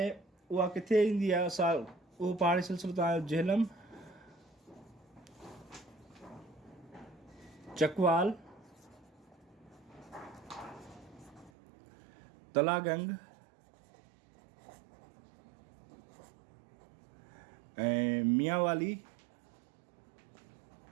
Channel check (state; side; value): drops out; left; at 11.5 s